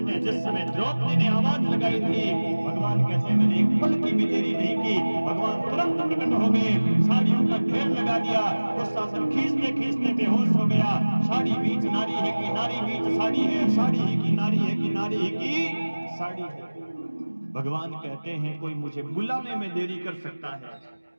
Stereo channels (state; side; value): inverted; both; correlation -1.00